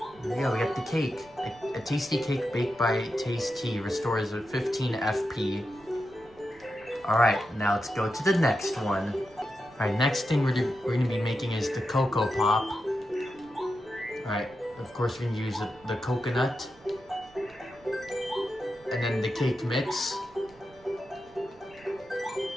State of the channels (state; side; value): noise; right; rumble, 27 dB below the sound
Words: There we go, we got the cake. A tasty cake baked by Tayce, restores 15 FP. Alright, now let's go to the next one. Alright, next thing we're going to be making is the Cocoa Pop. Alright, of course we're going to use the coconut. And then the cake mix.